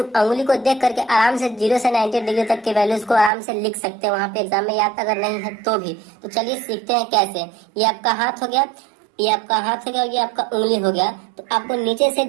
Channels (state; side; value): drops out; left; at 3.3 s